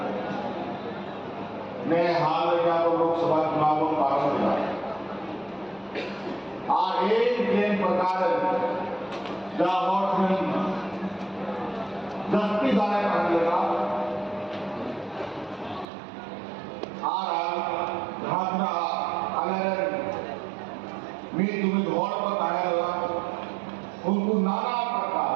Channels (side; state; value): left; drops out; at 15.9 s